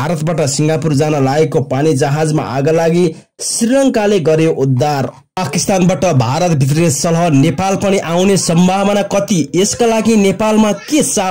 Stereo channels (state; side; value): identical; both; correlation 1.00